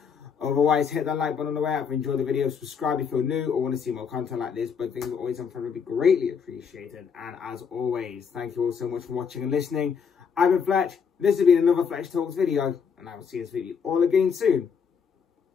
Otherwise, hit that like button on the way out if you enjoyed the video. Subscribe if you're new or want to see more content like this. But things are always on front would be greatly appreciated. And as always, thank you all so much for watching and listening. I've been Fletch. This has been another Fletch Talks video. And I will see this video all again soon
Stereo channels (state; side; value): quieter; right; 6.4 dB